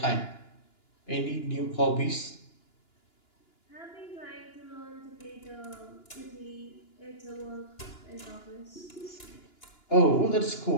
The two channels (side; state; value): right; late; 2.9 ms